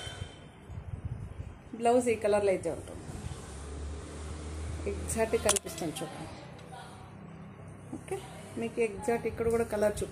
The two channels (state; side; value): identical; both; correlation 1.00